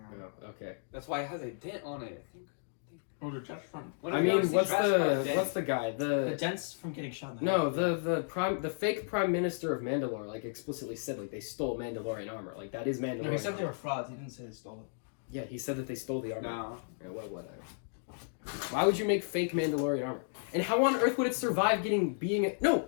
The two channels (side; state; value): right; silent; digital silence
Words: Mandalorian armor. Oh, okay. That's why it has a dent on it. I think. Oh, the chest front. I mean, what's the guy? The dents from getting shot in the No, head. the fake prime minister of Mandalore like explicitly said like they stole Mandalorian armor. Like that is Mandalorian. No, he said they armor. were frauds. He didn't say they stole it. Yeah, he said that they stole the armor. No. Yeah, whatever. Why would you make fake Mandalorian armor? And how on earth would it survive being? No,